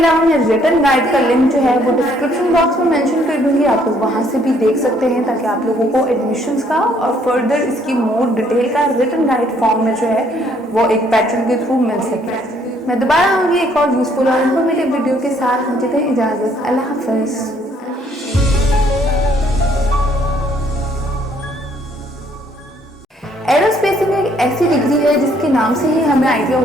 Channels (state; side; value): normal; both; correlation 0.65